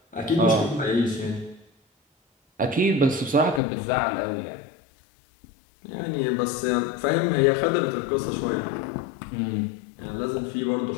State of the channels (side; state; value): right; drops out; at 3.6 s